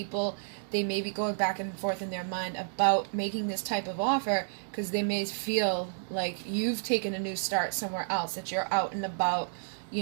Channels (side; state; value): left; silent; digital silence